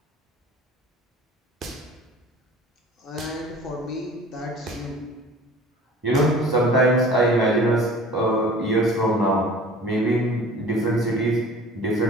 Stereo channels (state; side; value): normal; both; correlation 0.44